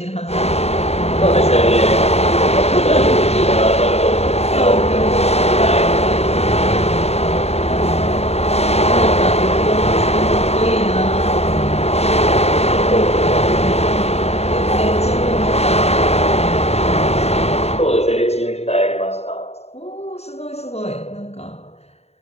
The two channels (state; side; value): late; right; 0.30 ms